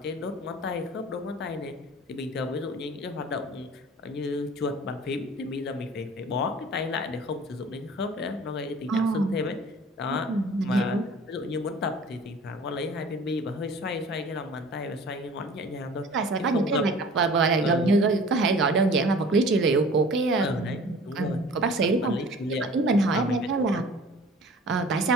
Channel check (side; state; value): both; normal; correlation 0.46